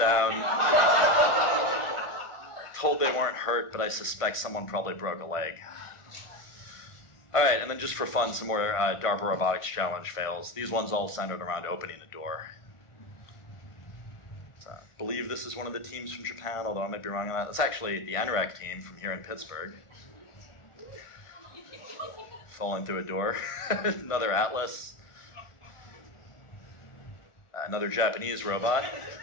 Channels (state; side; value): late; right; 1.6 ms